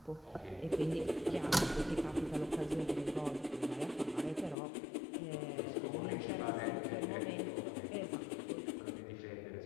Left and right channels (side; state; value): right; drops out; at 4.5 s